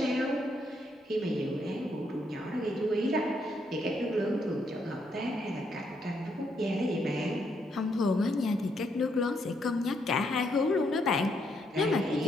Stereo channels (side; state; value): both; normal; correlation 0.75